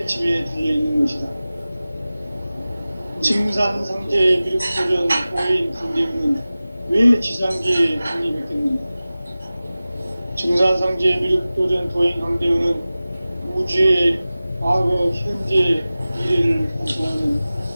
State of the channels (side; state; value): both; inverted; correlation -0.97